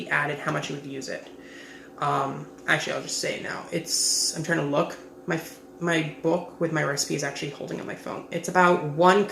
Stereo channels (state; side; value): identical; both; correlation 1.00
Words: added, how much you would use it. Actually, I'll just say it now. I'm trying to look. My book with my recipe is actually holding on my phone. It's about 1